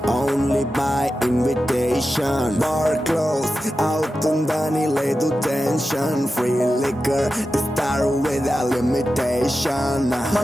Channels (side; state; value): both; normal; correlation 0.92